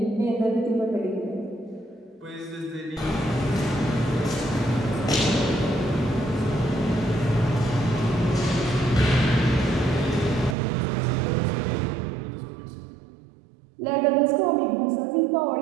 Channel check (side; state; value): left; drops out; at 10.6 s